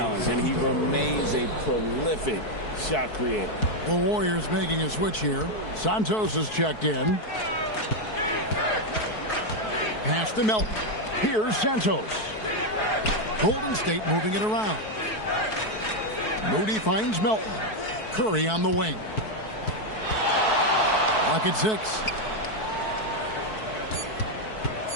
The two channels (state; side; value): late; right; 4.6 ms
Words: And he remains a prolific shot creator. The Warriors making a switch here. Santos is checked in. Pass to Melton. Here's Santos. Golden State moving it around. Moody finds Melton. Curry on the wing. Lock at 6.